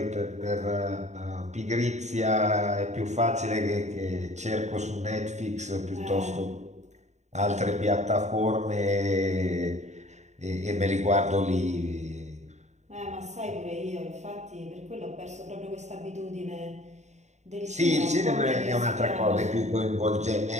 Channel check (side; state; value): left; late; 0.34 ms